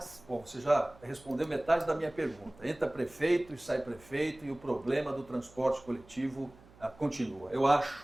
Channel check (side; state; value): right; noise; hum, 25 dB below the sound